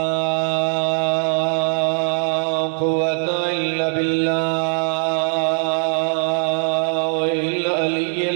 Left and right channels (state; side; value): silent; left; digital silence